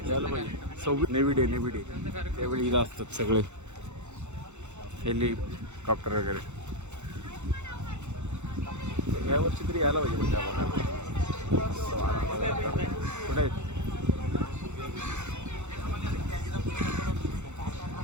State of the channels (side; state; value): left; late; 0.83 ms